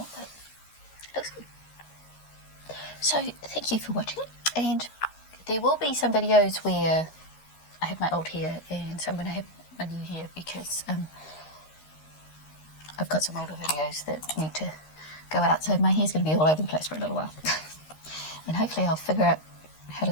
but it looks good. So thank you for watching, and there will be some videos where I have my old hair and some when I have my new hair, because I've got some older videos that need to go out, so my hair's going to be all over the place for a little while. And hopefully I'll figure out how to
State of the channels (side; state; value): right; late; 13 ms